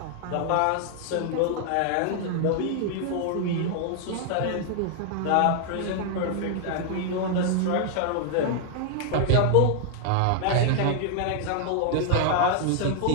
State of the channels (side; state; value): both; different; correlation 0.00